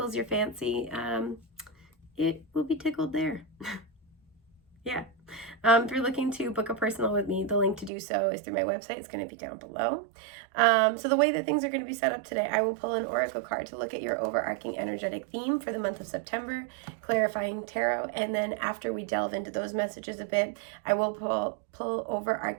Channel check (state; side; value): drops out; left; at 7.9 s